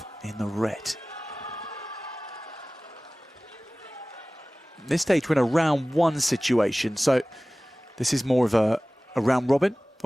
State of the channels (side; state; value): both; normal; correlation 0.98